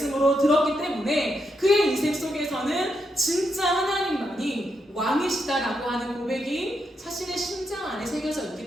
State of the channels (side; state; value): both; normal; correlation 0.82